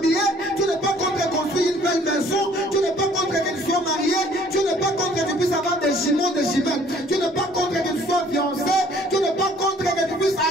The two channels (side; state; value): both; normal; correlation 0.57